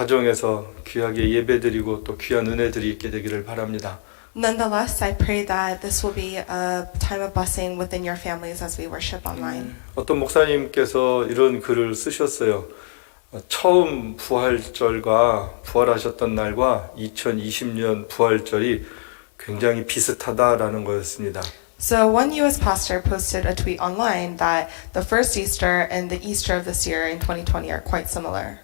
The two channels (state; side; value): silent; right; digital silence